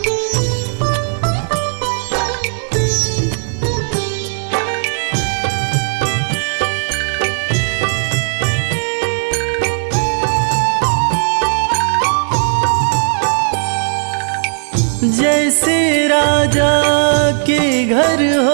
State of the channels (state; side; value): silent; left; digital silence